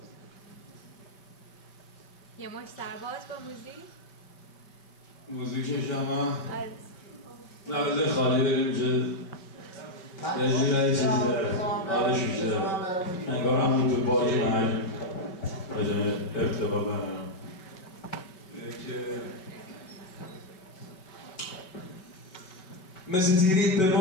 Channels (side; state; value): right; late; 5.3 ms